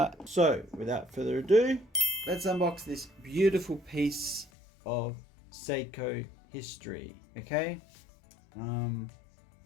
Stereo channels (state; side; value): drops out; right; at 4.5 s